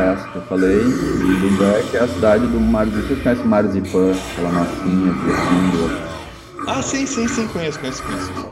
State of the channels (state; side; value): identical; both; correlation 1.00